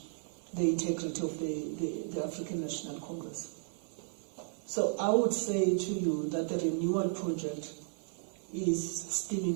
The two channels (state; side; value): silent; left; 55 dB below the other